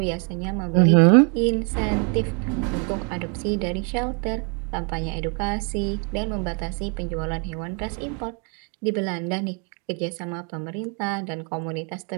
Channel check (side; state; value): left; quieter; 38.4 dB